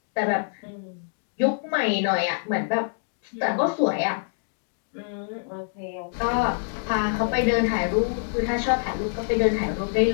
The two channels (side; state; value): right; silent; digital silence